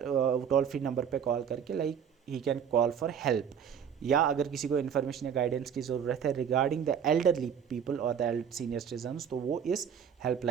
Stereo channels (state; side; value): quieter; left; 8.0 dB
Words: फ्री नंबर पे कॉल करके like he can call for help, या अगर किसी को इन्फॉर्मेशन या गाइडेंस की ज़रूरत है रिगार्डिंग द एल्डरली पीपल और द सीनियर सिटीजन्स, तो वो इस